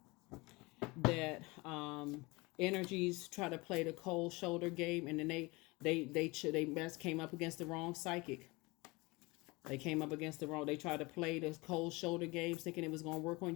energies try to play the cold shoulder game, and then they came up against the wrong psychic. They tried to play the cold shoulder games thinking it was going to work on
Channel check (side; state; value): right; quieter; 24.3 dB